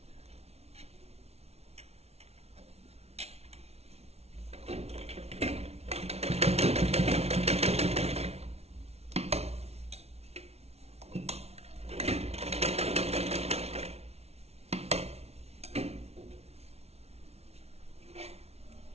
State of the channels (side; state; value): left; late; 0.31 ms